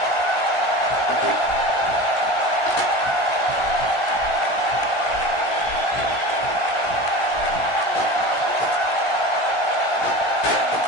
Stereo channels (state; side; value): late; right; 17 ms